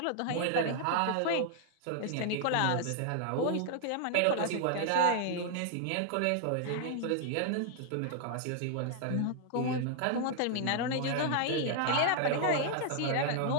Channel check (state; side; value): different; both; correlation 0.00